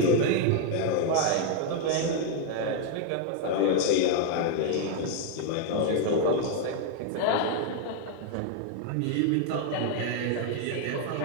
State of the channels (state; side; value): different; both; correlation 0.00